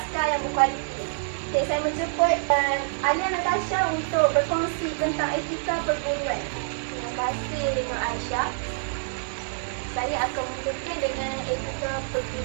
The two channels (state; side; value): silent; left; digital silence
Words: yang berkualiti. Okey, saya menjemput Alia Natasha untuk berkongsi tentang etika perguruan. Terima kasih Nur Aisyah. Saya akan mulakan dengan etika